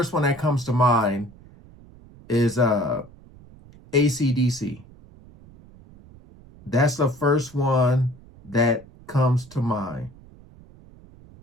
one that comes to mind is AC/DC. That's the first one that comes to mind.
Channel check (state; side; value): noise; right; rumble, 23 dB below the sound